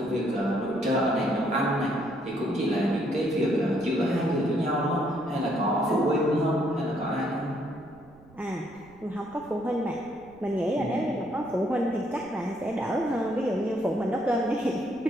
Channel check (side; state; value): right; noise; rumble, 25 dB below the sound